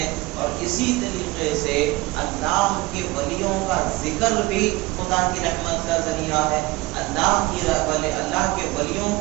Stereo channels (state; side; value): quieter; left; 20.9 dB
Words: اور اسی طریقے سے اللہ کے ولیوں کا ذکر بھی خدا کی رحمت کا ذریعہ ہے، اللہ کے ولیوں